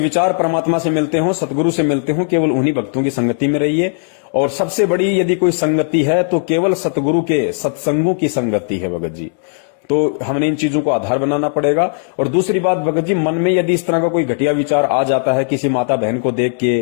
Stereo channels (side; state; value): right; silent; digital silence